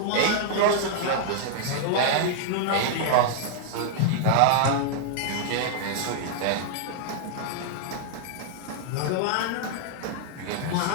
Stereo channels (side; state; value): both; different; correlation -0.01